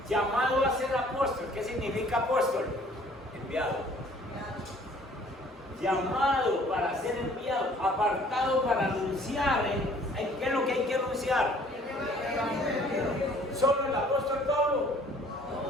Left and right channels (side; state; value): both; normal; correlation 0.56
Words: Llamado a ser apóstol. ¿Qué significa apóstol? Enviado. Llamado para ser enviado, apartado para anunciar. ¿Qué es lo que hay que anunciar? ¿Solo el apóstol Pablo?